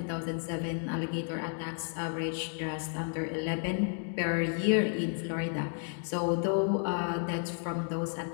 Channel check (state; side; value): silent; right; 56 dB below the other